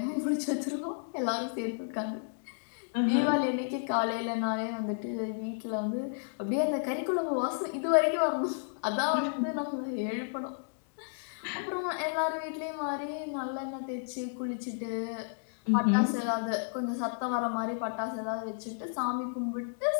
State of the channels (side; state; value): right; silent; digital silence